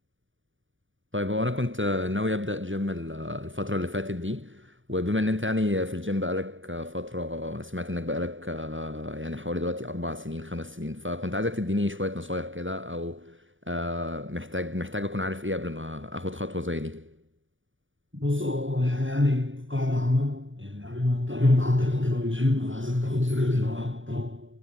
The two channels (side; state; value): left; late; 0.57 ms